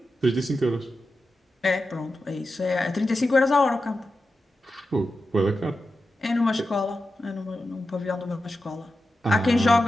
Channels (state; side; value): normal; both; correlation 0.91